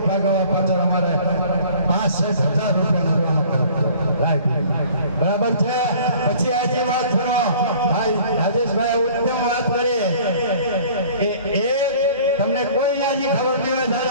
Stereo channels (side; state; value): both; inverted; correlation -0.50